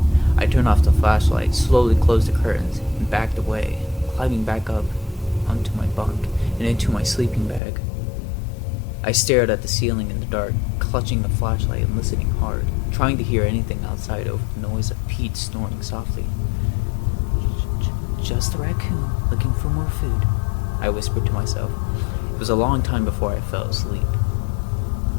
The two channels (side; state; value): right; drops out; at 7.6 s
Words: I turned off the flashlight, slowly closed the curtains, and backed away, climbing back up onto my bunk and into my sleeping bag. I stared at the ceiling in the dark, clutching the flashlight and listening hard, trying to hear anything outside over the noise of Pete snoring softly. Just a raccoon looking for more food, I whispered to myself. It was a long time before I fell asleep.